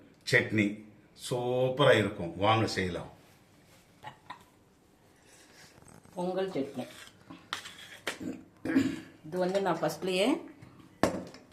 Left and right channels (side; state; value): both; identical; correlation 1.00